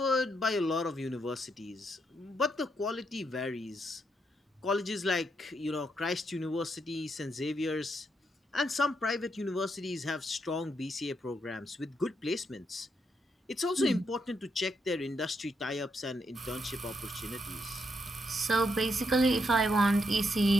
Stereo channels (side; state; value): both; normal; correlation 0.79